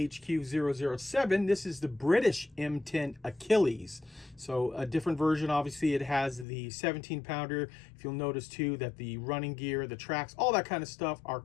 007. This is the British M10 Achilles. So a different version, obviously it has the 17 pounder. If you'll notice too that the running gear, the tracks, all that kind of stuff are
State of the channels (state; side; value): drops out; right; at 6.5 s